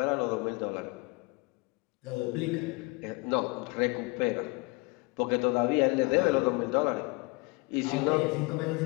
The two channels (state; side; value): quieter; right; 26.8 dB